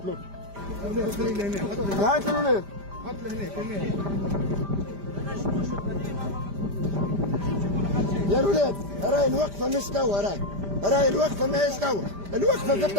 له. وعيت الولاد. حط له هناك. يا الولاد راي الوقفة مش توا. راي الوقفة ما هيش توا. الوقفة في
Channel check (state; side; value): late; left; 5.0 ms